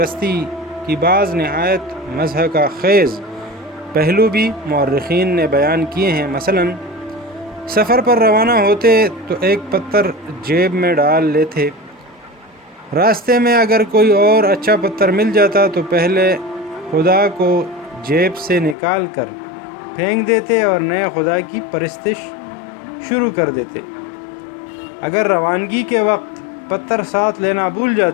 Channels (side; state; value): right; drops out; at 18.8 s